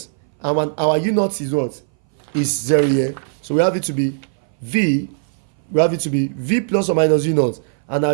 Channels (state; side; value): silent; left; 61 dB below the other